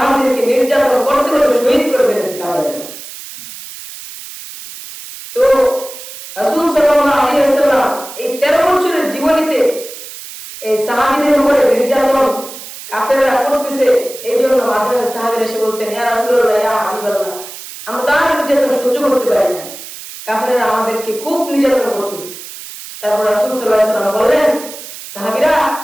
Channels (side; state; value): right; noise; hiss, 13 dB below the sound